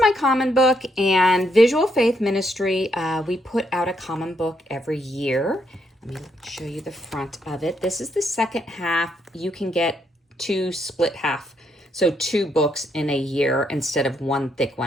my common book, and Visual Faith Ministry, we put out a common book every year. Let me show you the front of it. This is the second half. You can get two split half, so two books in a year instead of one thick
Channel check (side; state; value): both; normal; correlation 0.76